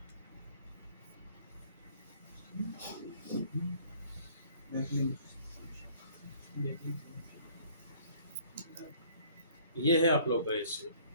ये है आप लोग का SEO.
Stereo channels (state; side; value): inverted; both; correlation -0.56